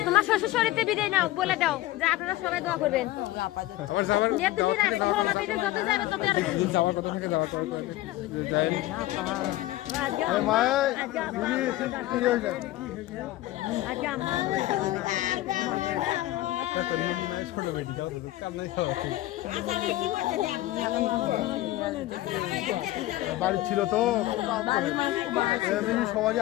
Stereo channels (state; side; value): quieter; right; 16.3 dB